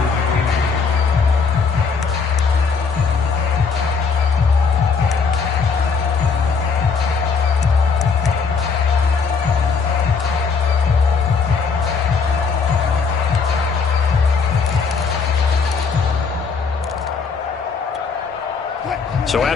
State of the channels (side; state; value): right; quieter; 5.2 dB